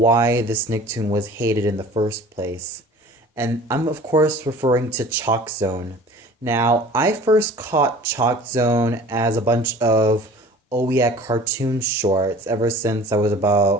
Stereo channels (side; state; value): both; normal; correlation 0.45